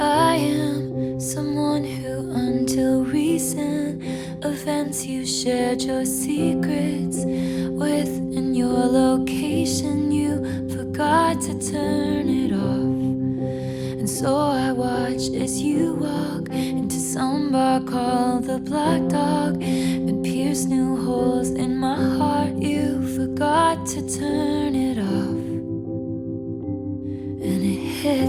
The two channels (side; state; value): both; identical; correlation 1.00